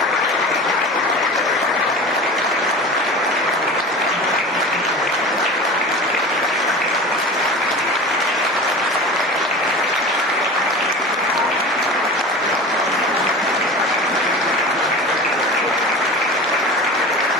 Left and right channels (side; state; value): both; normal; correlation 0.34